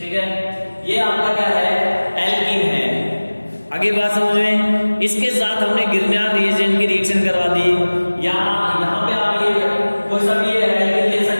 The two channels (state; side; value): inverted; both; correlation -1.00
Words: है, ये आपका क्या है, एल्कीन है। आगे बात समझ में, इसके साथ हमने ग्रिग्नार्ड रिएजेंट की रिएक्शन करवा दी। यहां पे आप ये कोई सा भी एल्कीन ले